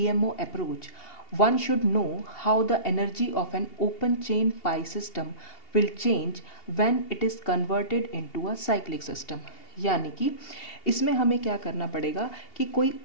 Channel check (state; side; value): late; right; 2.8 ms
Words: approach, one should know how the energy of an open chain pi system will change when it is converted into a cyclic system। यानी कि इसमें हमें क्या करना पड़ेगा कि कोई